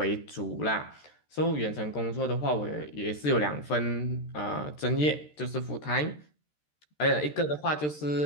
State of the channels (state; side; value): late; right; 13 ms